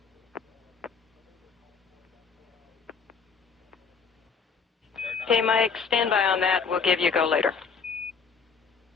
Okay, Mike, stand by on that. We'll give you a go later.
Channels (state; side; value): quieter; right; 5.7 dB